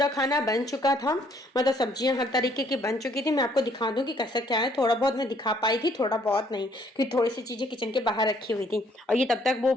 खाना बन चुका था, मतलब सब्जियां हर तरीके की बन चुकी थी। मैं आपको दिखा दूं कि कैसा क्या है, थोड़ा बहुत मैं दिखा पाई थी, थोड़ा बहुत नहीं, क्योंकि थोड़ी सी चीजें किचन के बाहर रखी हुई थी। और ये तब तक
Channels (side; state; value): both; normal; correlation 0.65